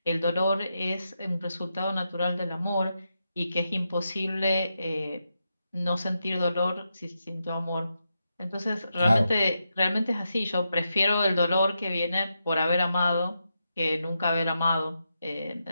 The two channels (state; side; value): inverted; both; correlation -0.86